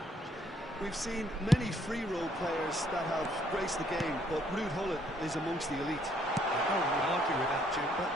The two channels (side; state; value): both; normal; correlation 0.67